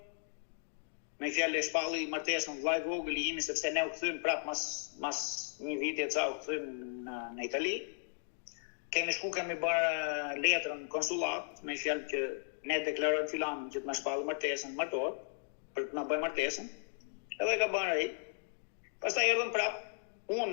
me fjalë e shpalli martesën vllai vogël i imi, sepse ne u kthym prap mas një viti e ca u kthym në Itali. Kemi bërë letrën konsullat, me fjalë që ne deklarojmë filanin që të na shpallë martesën, martohet, për të na bëjë martesën. Edhe ka bërë ai. Pastaj erdhëm prap,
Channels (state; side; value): silent; right; digital silence